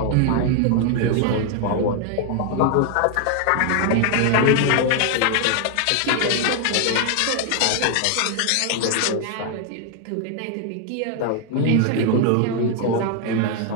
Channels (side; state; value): both; different; correlation 0.00